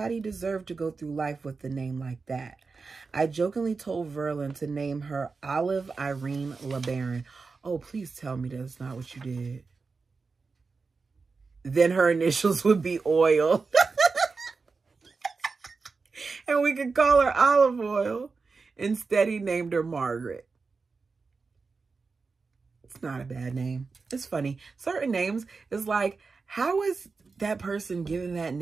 deserved to go through life with a name like that. I jokingly told Verlin to name her Olive Irene LeBaron. Oh, please tell me that's not what you did. Then her initials would be Oil. And we could call her Olive Oil. Instead, he named her Margaret. It's not a bad name. It's funny. Certain names is like, how is that person given that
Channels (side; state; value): left; quieter; 4.5 dB